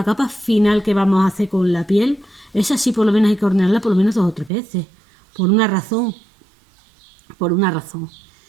capa final que vamos a hacer con la piel, esa sí por lo menos hay que hornearla por lo menos 2 o 3 veces. Por una razón. Por una razón.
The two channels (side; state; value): left; drops out; at 4.5 s